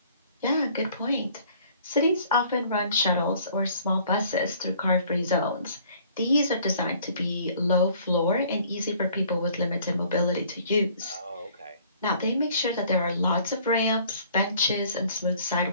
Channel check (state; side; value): inverted; both; correlation -0.56